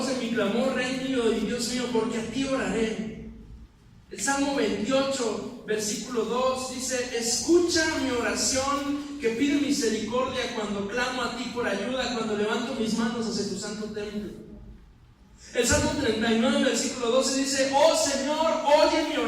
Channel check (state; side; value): identical; both; correlation 1.00